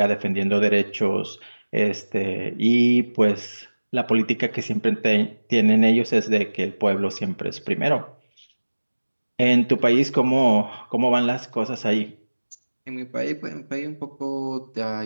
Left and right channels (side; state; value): both; inverted; correlation -1.00